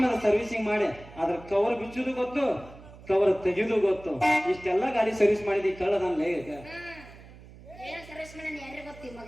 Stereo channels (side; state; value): right; noise; hum, 19 dB below the sound